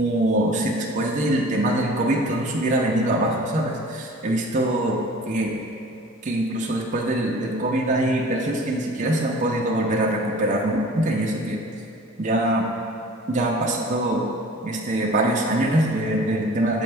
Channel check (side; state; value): both; normal; correlation 0.45